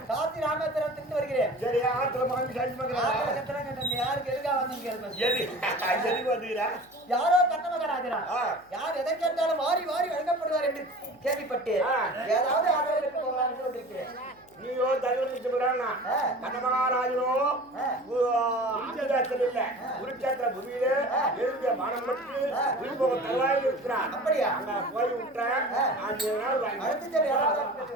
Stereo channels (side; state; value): left; noise; hum, 29 dB below the sound